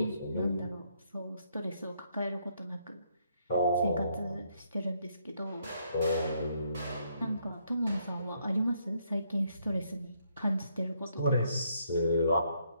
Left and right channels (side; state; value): both; inverted; correlation -0.72